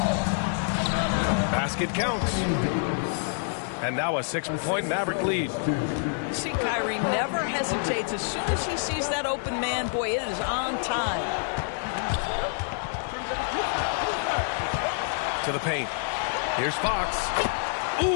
Basket counts. And now a 6-point Maverick lead. See, Kyrie never hesitates. As soon as he sees that open man, boy, it is on time. To the paint. Here's Fox.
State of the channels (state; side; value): silent; right; digital silence